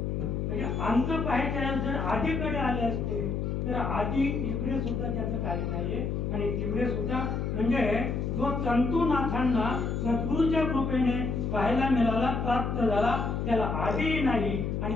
म्हणजे अंत पाहायच्या जर आधीकडे आले असते तर आधी इकडे सुद्धा त्याचं काही नाहीये आणि तिकडे सुद्धा म्हणजे जो तंतुनाथांना सद्गुरूच्या कृपेने पाहायला मिळाला, प्राप्त झाला, त्याला आधीही नाही आणि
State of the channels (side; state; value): left; noise; hum, 1 dB below the sound